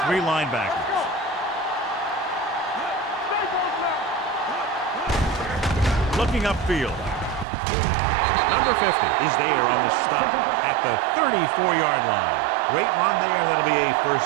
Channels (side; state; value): left; drops out; at 7.5 s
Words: 3 linebackers. Looking upfield. Number 50 is there on the stop at the 34-yard line. Great run there. That'll be a